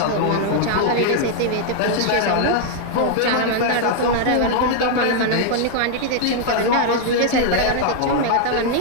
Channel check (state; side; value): different; both; correlation 0.00